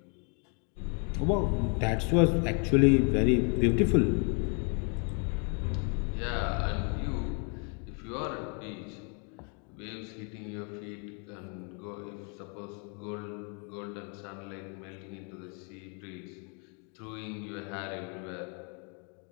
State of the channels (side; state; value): right; quieter; 37.5 dB